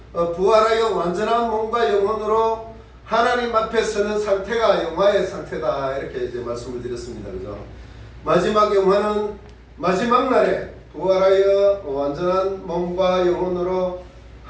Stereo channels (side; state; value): both; identical; correlation 1.00